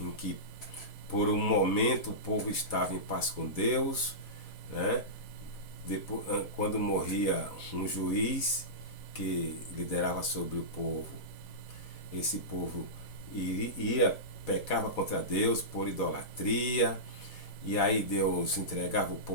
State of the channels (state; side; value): late; right; 4.1 ms